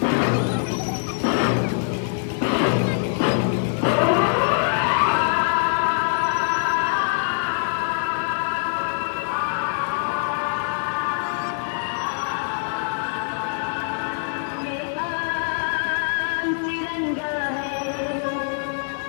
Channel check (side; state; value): right; silent; digital silence